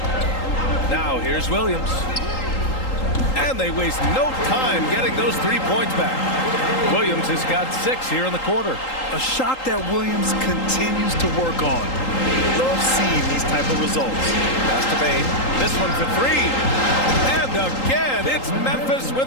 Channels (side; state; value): right; late; 3.8 ms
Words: Now here's Williams. And they waste no time getting those 3 points back. Williams has got 6 here in the quarter. A shot that Williams continues to work on. Love seeing these type of results. Pass to Bain. This one for 3. And again, it's Memphis